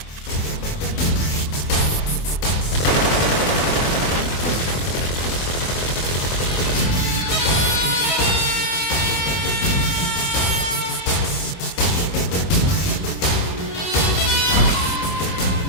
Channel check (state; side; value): late; right; 24 ms